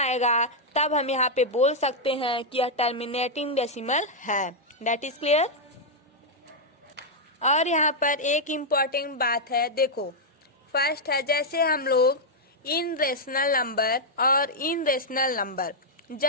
तब हम यहाँ पे बोल सकते हैं कि यह टर्मिनेटिंग डेसिमल है। That is clear. और यहाँ पर एक इम्पॉर्टेंट बात है, देखो फर्स्ट है जैसे हम लोग इन रेशनल नंबर और इन रेशनल नंबर,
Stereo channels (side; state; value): both; normal; correlation -0.04